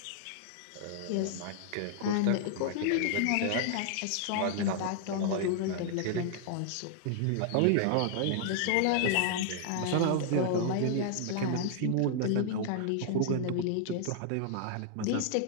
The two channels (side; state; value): both; different; correlation 0.00